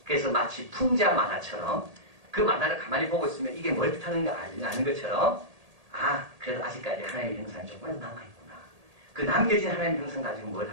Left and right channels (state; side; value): late; left; 1.8 ms